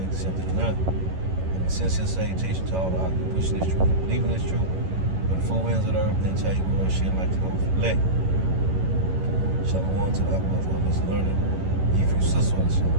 accepted or not. Sincere salutation to all the occupants pushing this truth, believing this truth, but the four winds of the earth, then tell you where shit like to go elect. Shalom to the Abbas, one is learning, if you sister,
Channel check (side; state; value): left; late; 11 ms